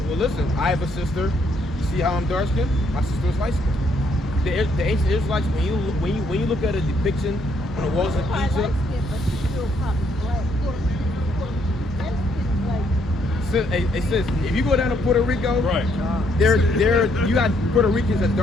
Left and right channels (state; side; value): normal; both; correlation 0.71